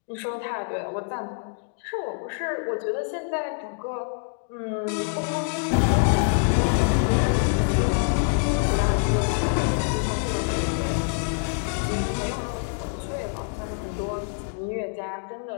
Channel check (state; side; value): silent; right; 61 dB below the other